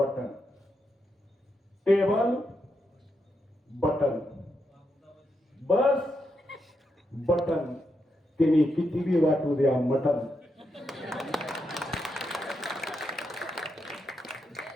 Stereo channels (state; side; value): normal; both; correlation 0.83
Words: टेबल बटन, बस बटन, तिने कितीही वाटू द्या मटन.